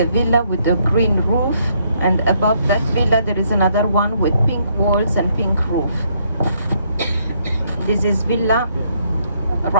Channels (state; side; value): inverted; both; correlation -0.71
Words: villa with a green roof, and above that villa there is another one with pink walls and pink roof. This is Villa